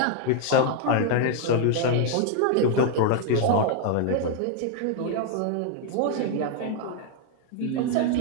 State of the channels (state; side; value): different; both; correlation 0.00